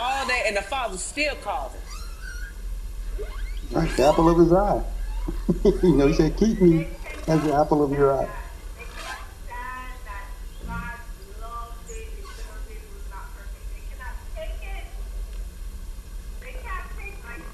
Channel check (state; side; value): identical; both; correlation 1.00